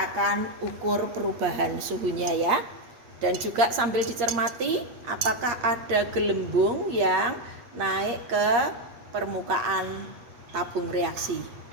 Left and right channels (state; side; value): late; left; 8.6 ms